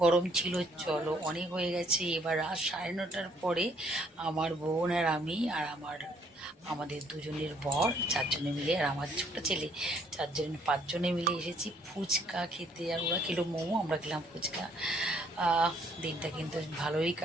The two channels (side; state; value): both; normal; correlation 0.64